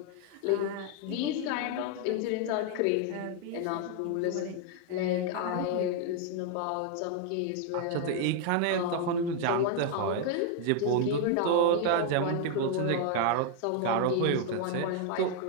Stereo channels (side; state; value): both; different; correlation 0.00